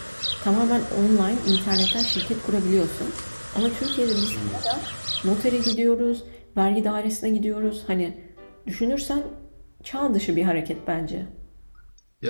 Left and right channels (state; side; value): inverted; both; correlation -1.00